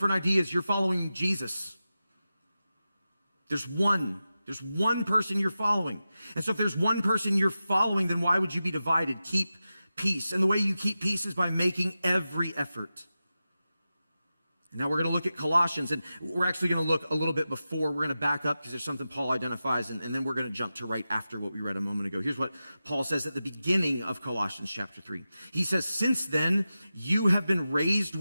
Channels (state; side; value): inverted; both; correlation -0.93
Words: ideas. You're following Jesus. There's one person you're following. And so if there's one person you're following, then why would you be divided? Keep peace. And the way you keep peace is by making every effort. And now we're going to look at Colossians, and we're actually going to look a little bit before. We're going to back up because there's something Paul identifies, and then we're going to jump to right after what we read a moment ago. Here's what Paul says at the beginning of Colossians chapter 3. He says, since then, you have been raised